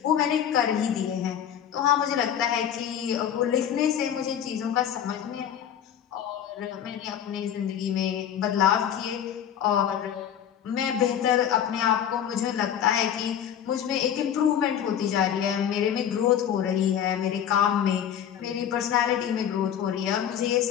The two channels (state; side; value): quieter; right; 9.4 dB